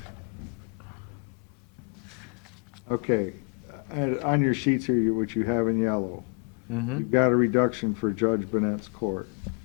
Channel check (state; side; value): quieter; right; 40.0 dB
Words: Okay, and on your sheets here, which you have in yellow, Mm-hmm. you've got a reduction for Judge Bennett's court.